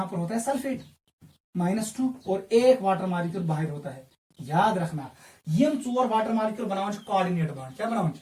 पर होता है सल्फेट -2 और एक वाटर मॉलिक्यूल बाहर होता है। याद रखना यम 4 वाटर मॉलिक्यूल बनाओ कोऑर्डिनेट बॉन्ड, क्या बनाओ,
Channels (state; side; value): identical; both; correlation 1.00